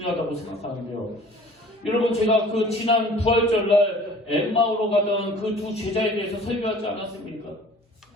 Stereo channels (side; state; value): both; normal; correlation 0.49